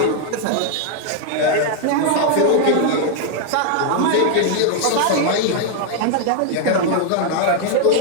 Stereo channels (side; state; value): both; different; correlation 0.00